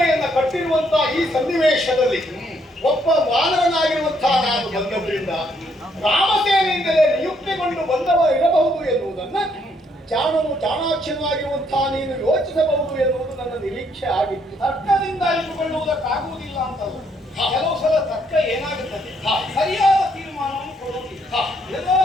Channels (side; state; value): both; normal; correlation 0.71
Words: ಕಟ್ಟಿರುವಂತಹ ಈ ಸನ್ನಿವೇಶದಲ್ಲಿ ಒಬ್ಬ ವಾನರನಾಗಿರುವಂತಹ ನಾನು ಬಂದವರಿಂದ ರಾಮಸೇನೆಯಿಂದಲೇ ನಿಯುಕ್ತಿಗೊಂಡು ಬಂದವ ಇರಬಹುದು ಎನ್ನುವುದನ್ನ ಜಾಣನು ಚಾಣಾಕ್ಷನಾಗಿರುವಂತಹ ನೀನು ಯೋಚಿಸಬಹುದು ಎನ್ನುವುದು ನನ್ನ ನಿರೀಕ್ಷೆ ಆಗಿತ್ತು. ತರ್ಕದಿಂದ ಇಟ್ಟುಕೊಳ್ಳುವುದಕ್ಕಾಗುವುದಿಲ್ಲ ಅಂತಲ್ಲ. ಕೆಲವು ಸಲ ತರ್ಕ ಏನಾಗುತ್ತದೆ, ಸರಿಯಾದ ತೀರ್ಮಾನವನ್ನು ಕೊಡುವುದಿಲ್ಲ. ಎಲ್ಲೋ